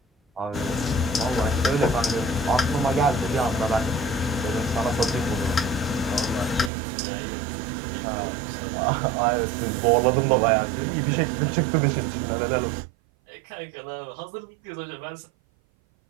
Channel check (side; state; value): left; drops out; at 6.7 s